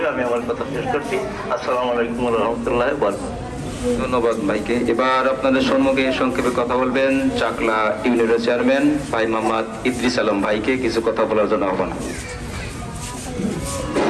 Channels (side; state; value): both; identical; correlation 1.00